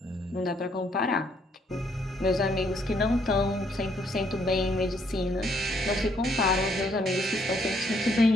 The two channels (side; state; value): both; normal; correlation 0.70